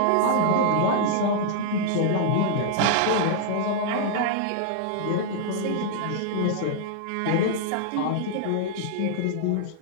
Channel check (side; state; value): both; different; correlation -0.01